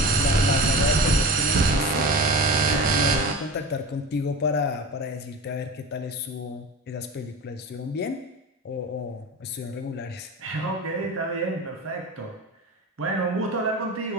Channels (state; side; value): normal; both; correlation 0.31